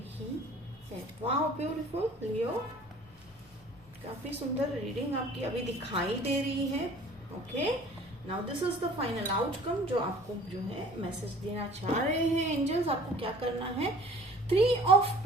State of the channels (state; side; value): normal; both; correlation 0.49